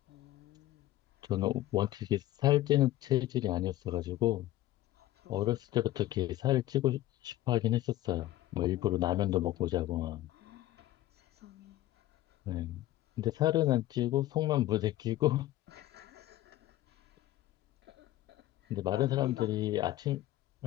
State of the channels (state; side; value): quieter; right; 15.1 dB